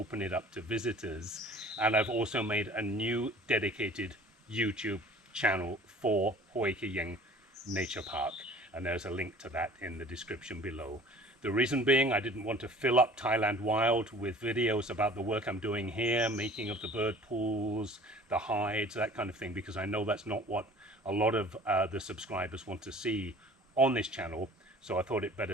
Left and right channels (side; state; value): both; normal; correlation 0.47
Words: it up to visitors. And I've also made a new dedicated YouTube channel for Hoi Ke Yeng Nature Park, and there's a link to that in the description below. The reason being, I didn't want to fill up Thailand Wild with videos about the work I'm doing here, making of the bird pools, the hides, that kind of thing, because I know that's not what a lot of the subscribers want to see on this channel. So I thought it